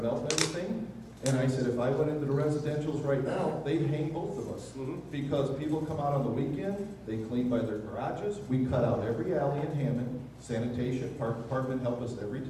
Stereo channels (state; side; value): identical; both; correlation 1.00